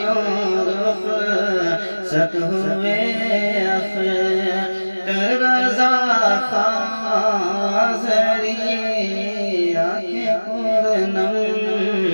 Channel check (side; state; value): both; inverted; correlation -1.00